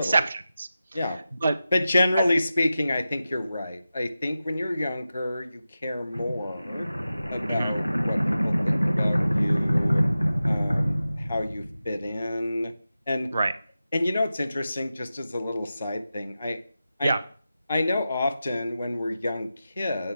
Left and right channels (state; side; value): inverted; both; correlation -0.93